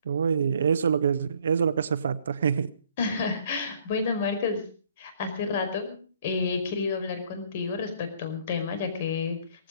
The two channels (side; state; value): both; inverted; correlation -0.62